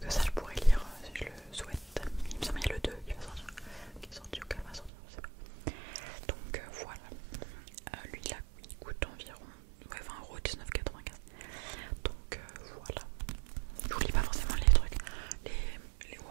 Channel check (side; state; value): left; drops out; at 4.9 s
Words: ça je pourrais lire si je le souhaite. Il me semble qu'il y a le 2 qui va sortir, qui est sorti ou qu'elle va sortir, je sais pas. Donc voilà, lui là il coûte environ 20 €, 19,95. Donc voilà, je vous lis pas forcément les trucs,